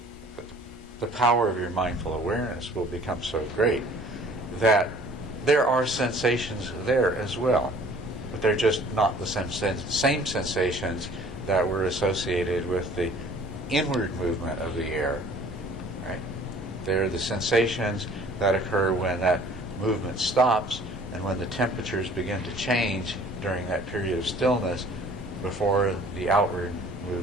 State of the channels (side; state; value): both; normal; correlation 0.52